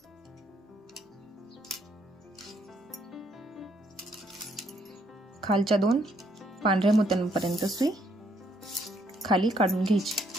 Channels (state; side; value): normal; both; correlation 0.70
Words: खालच्या 2 पांढऱ्या मोत्यांपर्यंत सुई खाली काढून घ्यायची